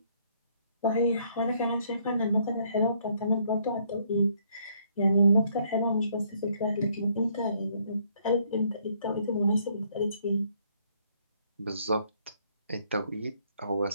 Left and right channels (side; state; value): both; inverted; correlation -0.67